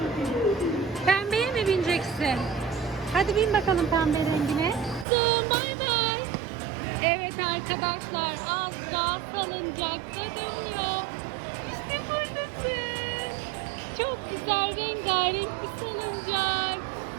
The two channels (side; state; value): left; drops out; at 5.1 s